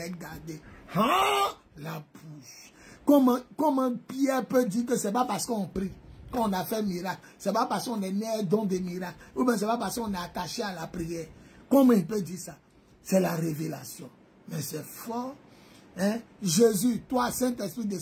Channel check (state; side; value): identical; both; correlation 1.00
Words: gardé. Hein? La bouche. Comment Pierre peut dire que c'est pas parce qu'on prie qu'on a fait miracle, c'est pas parce qu'on est né don des miracles, ou bien c'est pas parce qu'on est attaché à la prière. Comment il peut dire ça? C'est la révélation. Mais c'est fort. Hein? Jésus, toi, Saint-Esprit